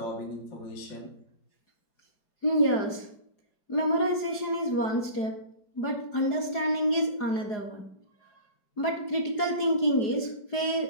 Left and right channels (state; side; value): late; right; 4.8 ms